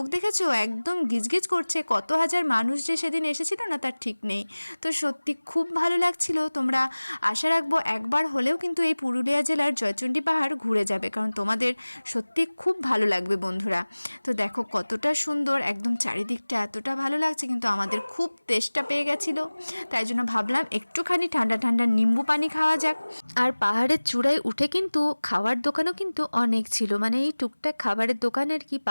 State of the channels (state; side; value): inverted; both; correlation -1.00